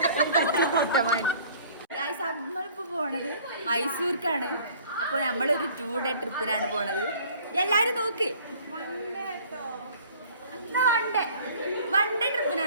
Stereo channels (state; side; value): inverted; both; correlation -0.52